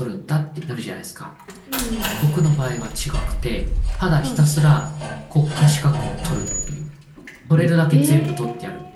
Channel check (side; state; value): both; identical; correlation 1.00